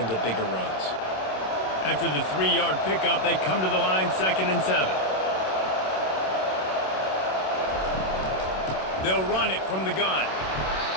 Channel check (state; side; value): late; right; 27 ms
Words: bigger runs. After the 3-yard pickup, they come to the line, 2nd and 7. They'll run it from the gun.